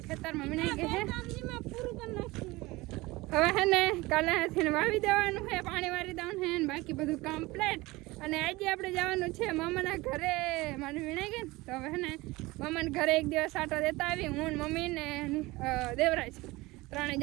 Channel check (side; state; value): left; quieter; 21.1 dB